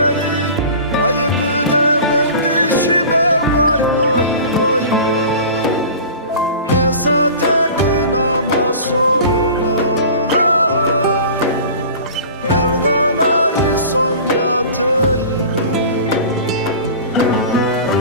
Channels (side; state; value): both; inverted; correlation -0.39